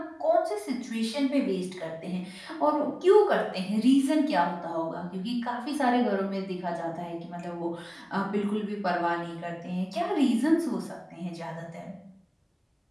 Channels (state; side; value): identical; both; correlation 1.00